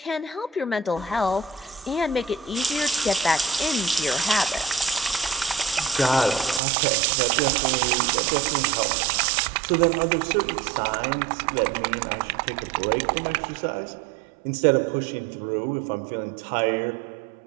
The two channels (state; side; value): drops out; left; at 6.6 s